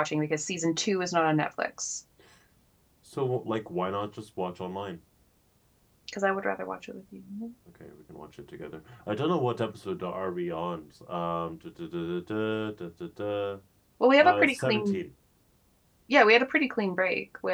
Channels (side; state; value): both; identical; correlation 1.00